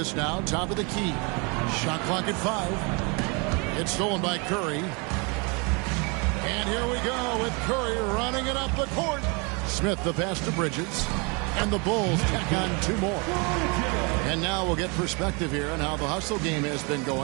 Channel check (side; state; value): left; quieter; 31.1 dB